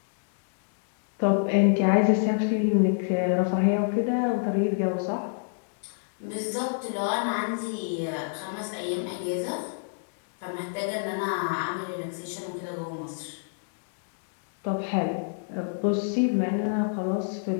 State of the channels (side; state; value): right; silent; digital silence